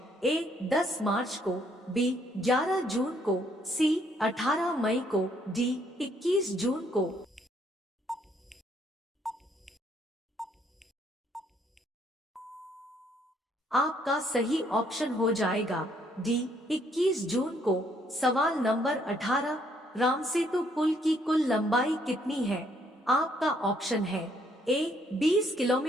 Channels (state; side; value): normal; both; correlation 0.68